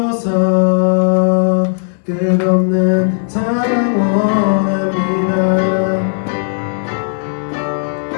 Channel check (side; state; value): right; silent; digital silence